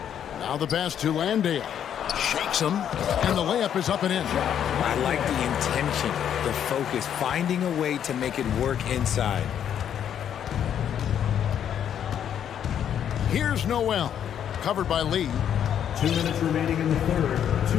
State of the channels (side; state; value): right; quieter; 9.3 dB